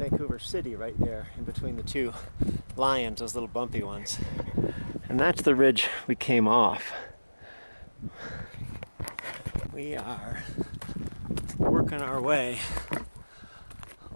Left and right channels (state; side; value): inverted; both; correlation -1.00